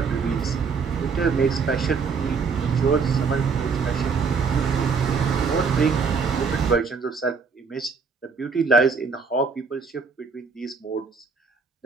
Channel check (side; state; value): left; quieter; 5.2 dB